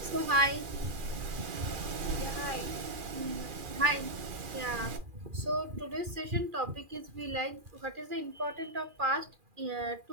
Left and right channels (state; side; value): late; left; 2.4 ms